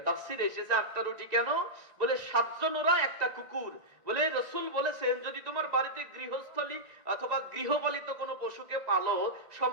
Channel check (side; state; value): left; late; 1.9 ms